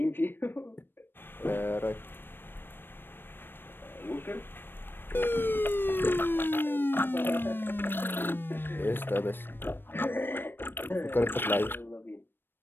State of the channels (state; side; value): late; right; 0.097 ms